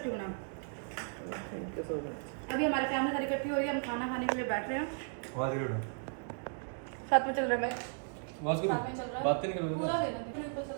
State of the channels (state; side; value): silent; left; 54 dB below the other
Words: बना। Thank you so much. अभी हमारी फैमिली सारी इकट्ठी हो रही है, हम खाना खाने के लिए बैठ रहे हैं। साथ में चल रहा है। आवाज करो, साथ में चल रहा है। बात नहीं करो पूरा देना, पूरा ऊपर